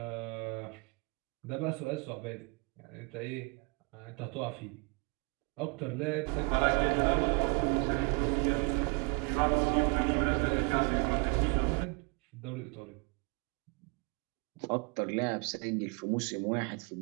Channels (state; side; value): quieter; left; 32.0 dB